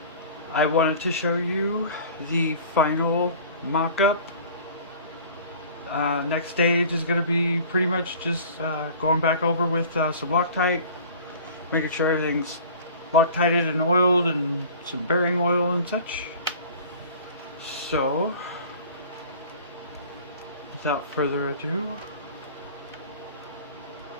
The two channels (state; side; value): inverted; both; correlation -0.44